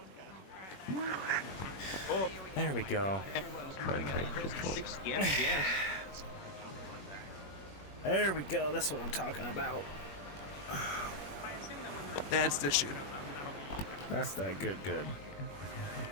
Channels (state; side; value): late; right; 21 ms